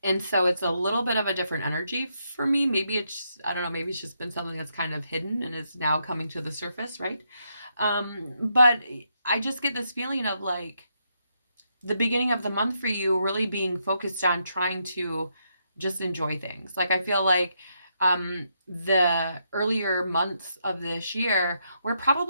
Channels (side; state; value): both; inverted; correlation -0.79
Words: and so it's a little bit of a different energy for me. Maybe it's, I don't know, maybe it's just been something that's kind of hidden and is now coming to the surface, right? But I just get this feeling of like the beginning of the month for you really being focused on trying to just enjoy things. Like I feel like the earlier months of this year were